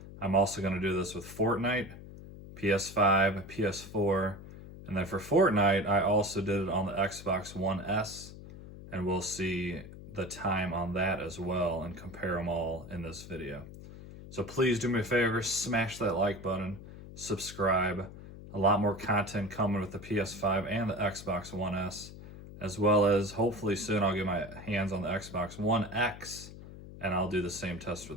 I'm also going to do this with Fortnite, PS5, PS4, and then for Fortnite, I also did it on the Xbox One S, and we'll see the time on that as well and compare them all in this video. So please do me a favor, smash that like button, subscribe. A lot more content coming with the PS5 and the Xbox One S, as well as hopefully soon I'll get my hands on the Xbox One X, and I'll do the same test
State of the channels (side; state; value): left; noise; hum, 15 dB below the sound